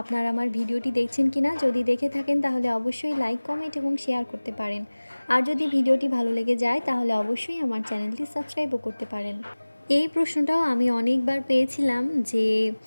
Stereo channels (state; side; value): inverted; both; correlation -1.00